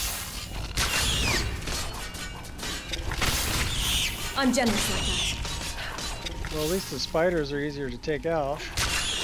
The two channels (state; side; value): identical; both; correlation 1.00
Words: I'm generous like that. Well, at least the spiders are easier to take out.